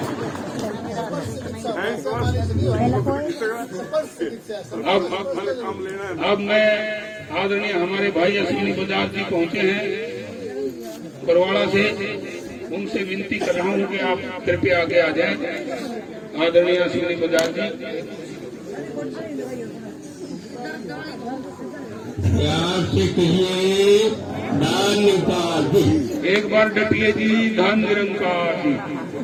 अब मैं आदरणीय हमारे भाई अश्विनी बजाज जी पहुंचे हैं बरवाड़ा से, उनसे विनती कर रहा हूँ कि आप कृपया आगे आ जाएं। आदरणीय अश्विनी बजाज जी, प्यार से कहिए दान निरंकार। एक बार डटिए जी, धन निरंकार जी।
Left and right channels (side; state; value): both; identical; correlation 1.00